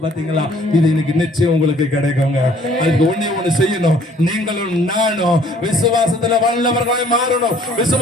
பாத்தீங்களா? இது இன்னைக்கு நிச்சயம் உங்களுக்கு கிடைக்குங்க. அதுக்கு ஒண்ணு செய்யணும். நீங்களும் நானும் விசுவாசத்துல வல்லவர்களாய் மாறணும்,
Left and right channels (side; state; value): both; normal; correlation 0.58